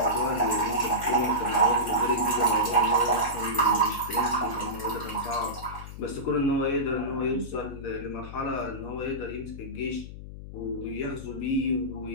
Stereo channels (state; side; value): noise; left; hum, 12 dB below the sound